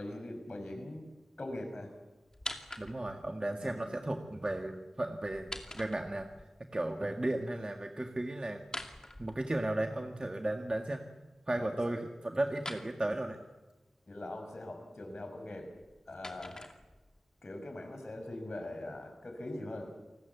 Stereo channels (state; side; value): normal; both; correlation 0.97